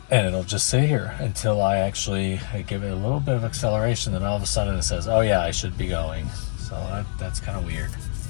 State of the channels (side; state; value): right; silent; digital silence